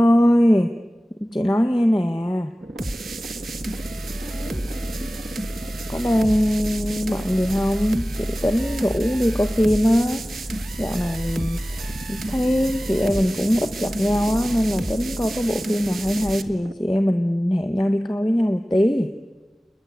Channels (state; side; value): normal; both; correlation 0.97